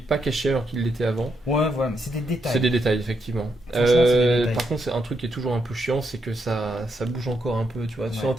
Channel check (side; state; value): both; normal; correlation 0.79